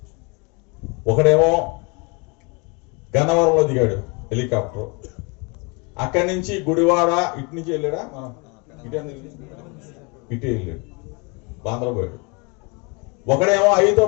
ఒకడేమో గన్నవరంలో దిగాడు హెలికాప్టర్, అక్కడి నుంచి గుడివాడ ఇటు నుంచి వెళ్ళాడా, మనం ఇటే వెళ్ళాడు, బాంద్రా పోయాడు. ఒకడేమో అయితో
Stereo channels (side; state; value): right; quieter; 30.5 dB